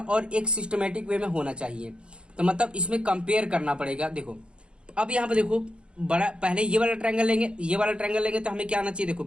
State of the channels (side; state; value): left; late; 0.055 ms